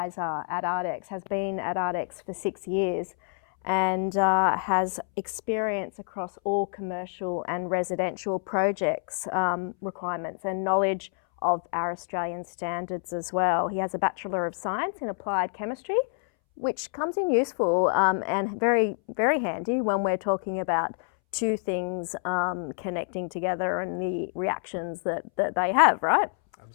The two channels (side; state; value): right; silent; 60 dB below the other